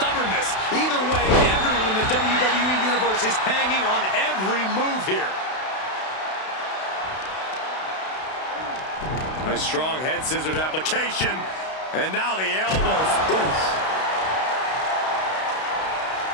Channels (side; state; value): right; late; 32 ms